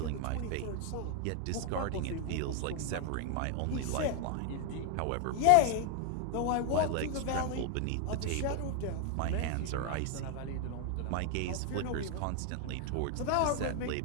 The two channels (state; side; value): different; both; correlation 0.00